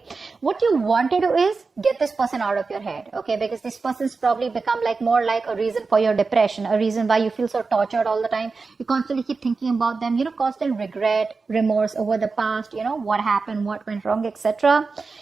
What you want to do is get this person out of your head, okay? Because this person's probably become like more like a reason for your depression, a reason why you feel so tortured all the time. You constantly keep thinking about them, constant regret, remorse over the past, what happened, what went wrong, etc.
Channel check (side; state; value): left; quieter; 4.3 dB